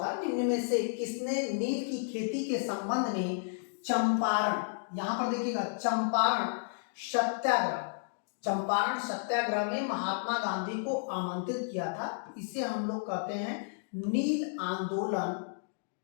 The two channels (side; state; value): right; silent; digital silence